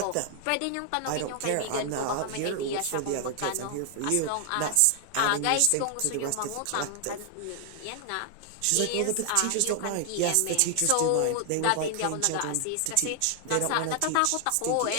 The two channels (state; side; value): different; both; correlation 0.00